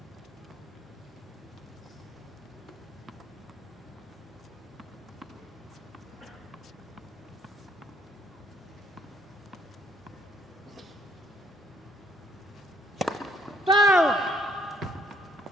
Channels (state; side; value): normal; both; correlation 0.67